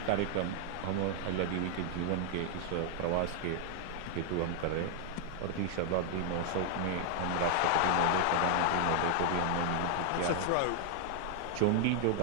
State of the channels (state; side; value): different; both; correlation 0.00